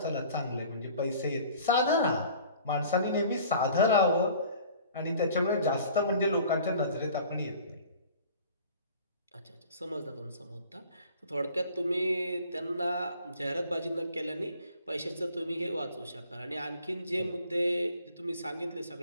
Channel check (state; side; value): inverted; both; correlation -0.49